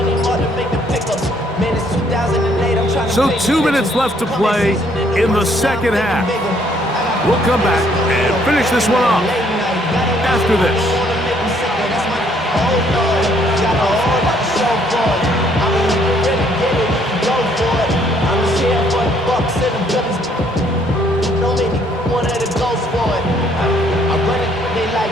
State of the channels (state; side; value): normal; both; correlation 0.66